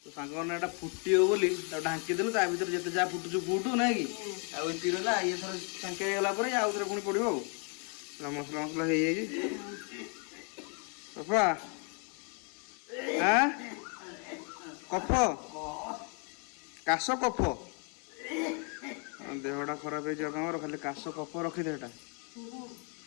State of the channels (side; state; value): right; quieter; 37.8 dB